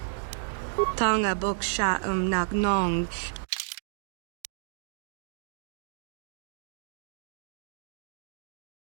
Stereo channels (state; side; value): silent; left; digital silence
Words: Tanga boksha nagnong.